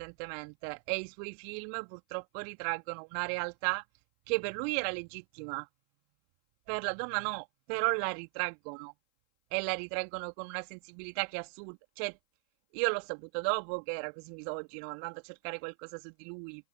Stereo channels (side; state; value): left; silent; 53 dB below the other